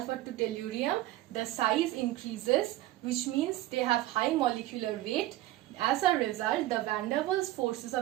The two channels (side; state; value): left; quieter; 15.9 dB